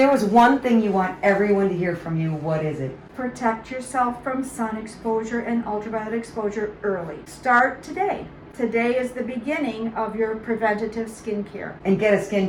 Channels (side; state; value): both; identical; correlation 1.00